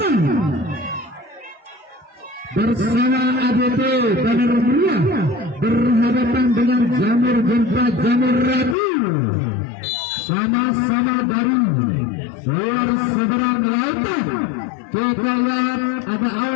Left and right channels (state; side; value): drops out; right; at 8.8 s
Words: bersama ADT Banar Meriah berhadapan dengan Jamur Jempa Jamur Rabu, sama-sama dari luar seberang lautan. Kita lihat ada